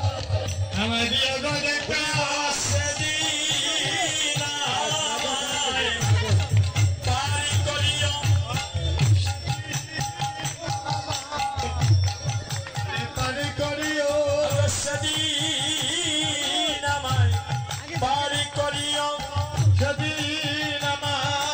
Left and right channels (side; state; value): both; identical; correlation 1.00